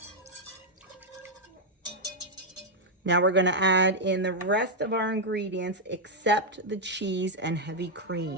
Now we're going to add in the rest of our ingredients except the cheese and heavy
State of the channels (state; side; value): normal; both; correlation -0.01